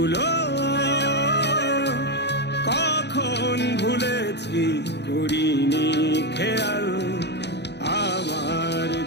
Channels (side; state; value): right; late; 0.50 ms